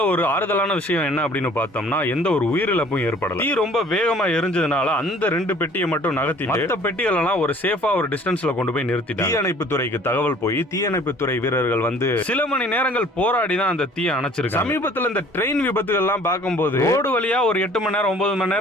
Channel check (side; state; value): both; normal; correlation 0.53